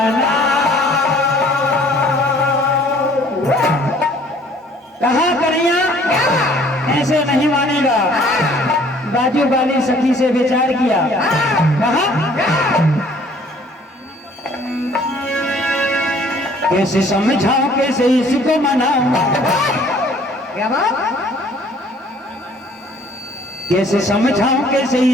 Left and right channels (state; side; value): normal; both; correlation 0.56